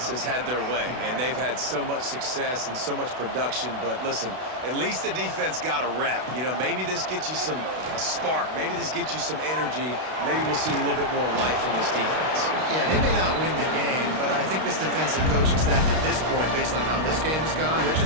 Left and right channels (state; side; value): late; left; 32 ms